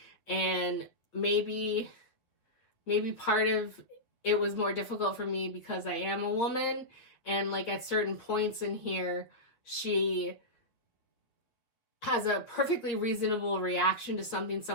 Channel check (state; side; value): late; right; 8.3 ms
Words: And maybe part of it was more difficult for me because I am a woman, and like at certain points in here, she has a perfectly reasonable reaction to something